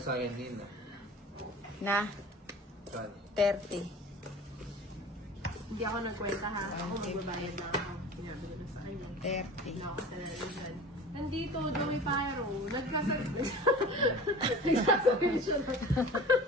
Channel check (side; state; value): both; normal; correlation 0.39